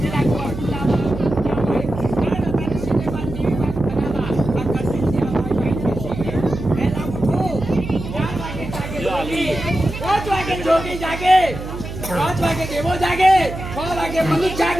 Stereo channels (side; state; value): right; noise; hum, 9 dB below the sound